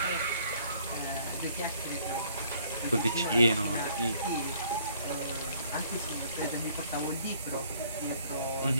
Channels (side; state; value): both; inverted; correlation -0.60